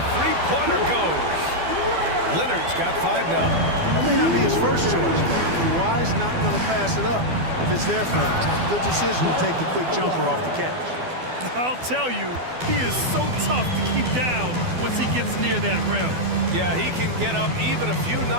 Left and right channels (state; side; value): late; left; 12 ms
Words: three-pointer goes. Leonard's got 5 now. That may not be his first choice, but Kawhi's not going to pass it up if it's there for him. Good decision to take the quick jumper off the catch. I'll tell you, he is so tough to keep down once he gets near that rim. Yeah, he can get up even a few